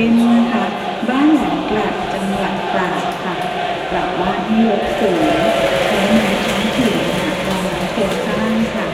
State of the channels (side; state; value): both; identical; correlation 1.00